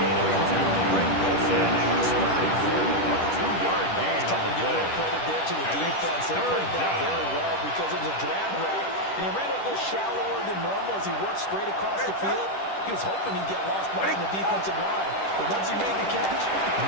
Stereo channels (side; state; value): right; late; 10 ms